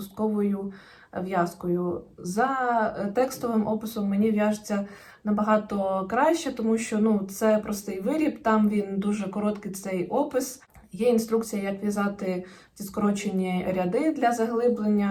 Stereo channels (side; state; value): both; identical; correlation 1.00